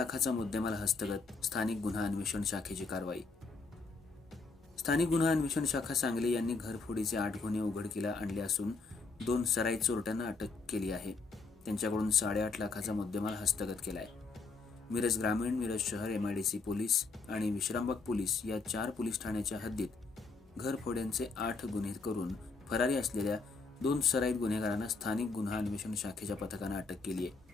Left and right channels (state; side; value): quieter; right; 4.2 dB